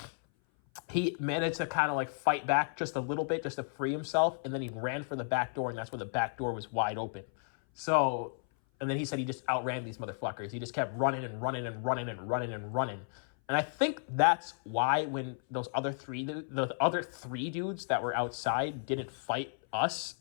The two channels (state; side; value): silent; right; 56 dB below the other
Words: he managed to kind of like fight back just a little bit just to free himself, and then he ran for the back door, and that's when the back door was wide open. So, and then he said he just outran these motherfuckers. He just kept running and running and running and running and running. And I think that's why when the other three dudes that were outside didn't fight